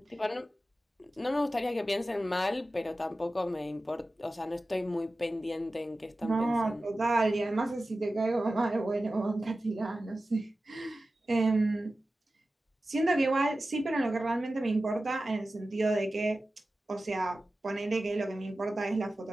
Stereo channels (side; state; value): both; normal; correlation 0.95